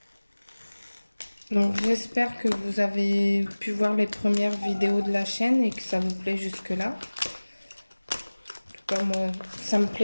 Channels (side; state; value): both; inverted; correlation -1.00